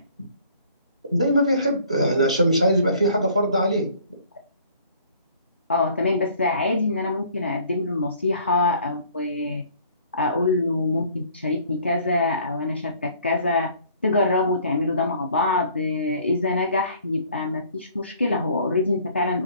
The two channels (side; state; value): both; inverted; correlation -0.56